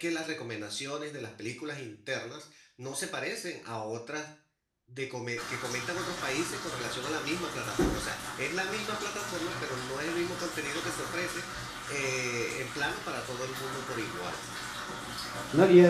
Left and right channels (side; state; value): both; identical; correlation 1.00